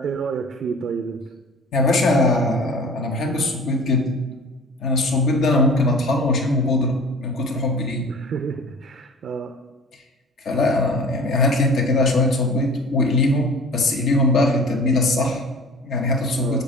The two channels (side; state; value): both; normal; correlation 0.42